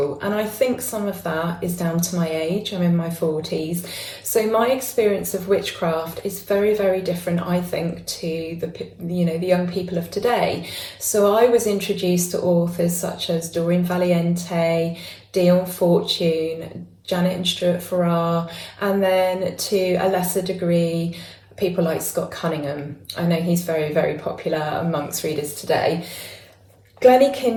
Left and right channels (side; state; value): both; identical; correlation 1.00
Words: and I think some of that is down to my age. I'm in my 40s, so my experience of witchcraft is very, very different, I think, to the young people of today. So I was introduced to authors such as Doreen Valiente, Dion Fortune, Janet and Stuart Farrar, and then to a lesser degree people like Scott Cunningham. I know he's very, very popular amongst readers today. Glennie